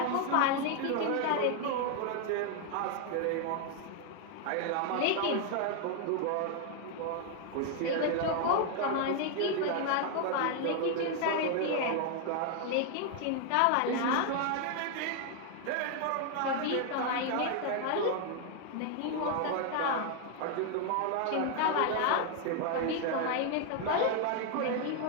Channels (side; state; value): both; different; correlation 0.00